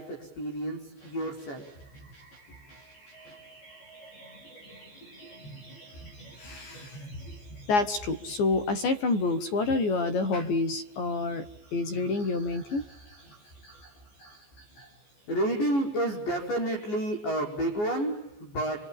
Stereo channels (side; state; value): right; late; 14 ms